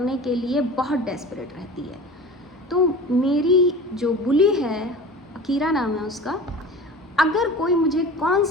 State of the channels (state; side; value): normal; both; correlation 0.37